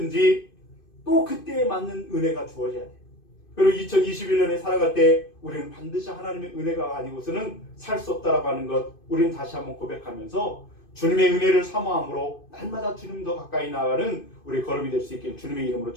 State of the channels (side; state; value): right; late; 2.5 ms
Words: 또 그때에 맞는 은혜가 주어져야 돼요. 그리고 2021년에 살아갈 때 우리는 반드시 하나님의 은혜가 아니고서는 살 수 없다라고 하는 것, 우리는 다시 한번 고백하면서 주님의 은혜를 사모함으로 날마다 주님 더 가까이 나아가는 우리 걸음이 될 수 있길 주님의 이름으로